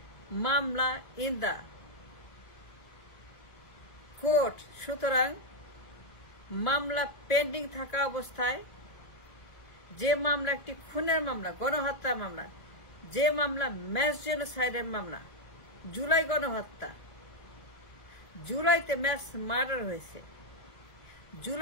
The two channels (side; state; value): right; late; 2.6 ms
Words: মামলা ইন দ্য কোর্ট। সুতরাং মামলা পেন্ডিং থাকা অবস্থায়, যে মামলা একটি খুনের মামলা, গণহত্যার মামলা, যে মামলা ম্যাস জেনোসাইডের মামলা, জুলাই গণহত্যা, জুলাইতে ম্যাস মার্ডার হয়েছে,